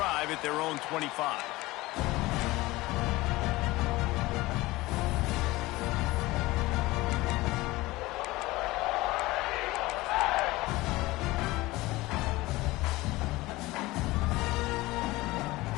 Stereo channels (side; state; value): right; quieter; 19.8 dB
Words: at their own 25.